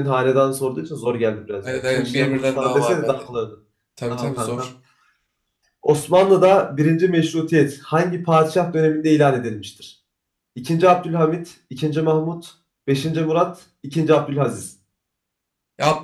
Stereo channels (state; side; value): identical; both; correlation 1.00